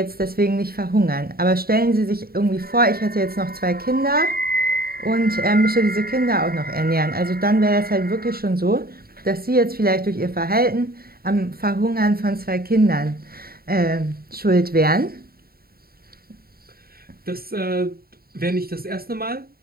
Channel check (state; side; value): late; left; 0.44 ms